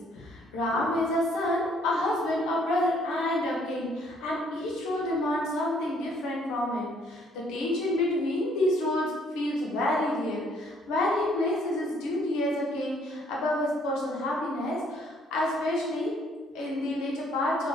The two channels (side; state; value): both; normal; correlation 0.64